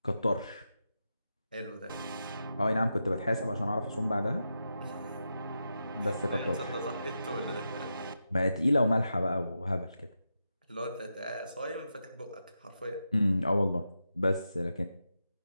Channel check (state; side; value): inverted; both; correlation -0.88